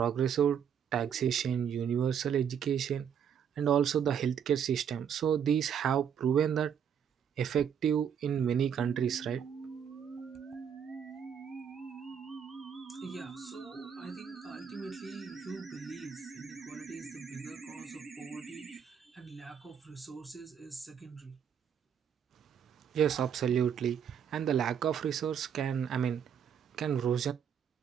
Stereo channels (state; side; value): quieter; left; 8.1 dB